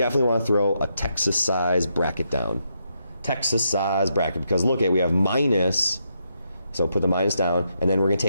want to throw a Texas size bracket down. Texas size bracket, because look at, we have minus, so put the minus down, and then we're going to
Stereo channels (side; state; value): both; inverted; correlation -0.80